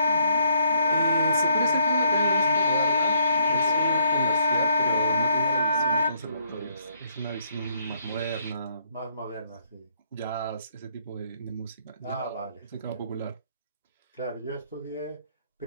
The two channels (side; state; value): both; inverted; correlation -0.69